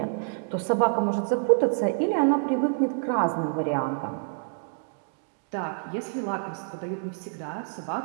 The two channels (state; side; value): silent; left; digital silence